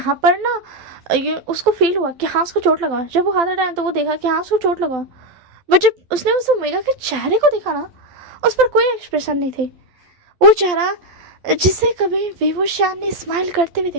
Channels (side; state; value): left; late; 11 ms